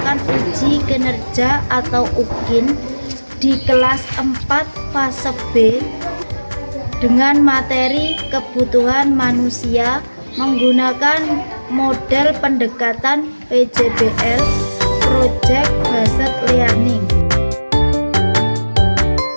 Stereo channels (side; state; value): both; inverted; correlation -1.00